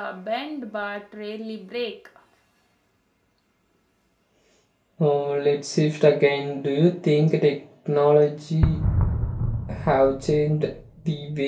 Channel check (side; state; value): both; identical; correlation 1.00